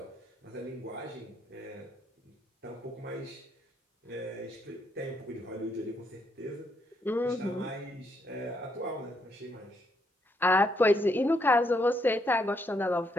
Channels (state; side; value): normal; both; correlation 0.75